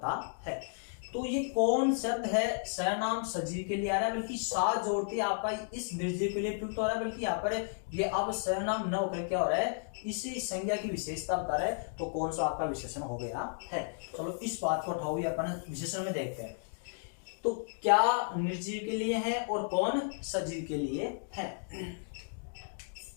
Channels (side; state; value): right; silent; digital silence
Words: है। तो ये कौन शब्द है सर्वनाम सजीव के लिए आ रहा है, बल्कि सा जोड़ते आपका इस निर्जीव के लिए प्रयुक्त हो रहा है। बल्कि यहाँ पर ये अब सर्वनाम न होकर क्या हो रहा है, इसी संज्ञा की विशेषता बता रहा है। तो कौन सा आपका विशेषण हो गया है। चलो इस बात को उठाओ, अपन विशेषण में देखते हैं। तो क्या निर्जीव के लिए है और कौन सजीव के लिए है।